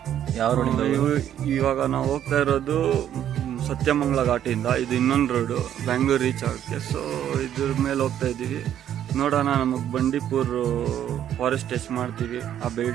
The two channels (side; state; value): left; quieter; 10.5 dB